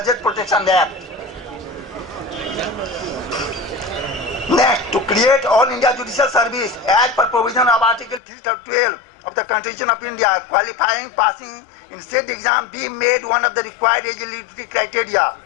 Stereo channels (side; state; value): right; drops out; at 8.2 s